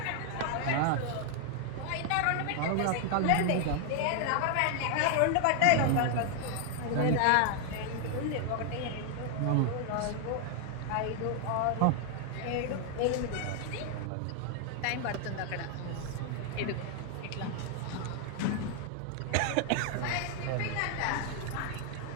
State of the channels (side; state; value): both; different; correlation 0.00